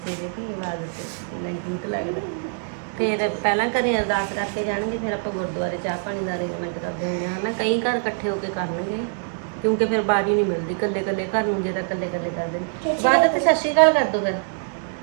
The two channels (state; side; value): silent; left; 63 dB below the other